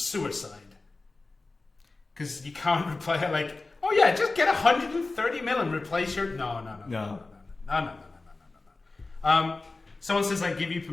Because you can't replay it like, oh yeah, just get 130 mil and replace your... No. Someone says, I give you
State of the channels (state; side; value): quieter; right; 3.4 dB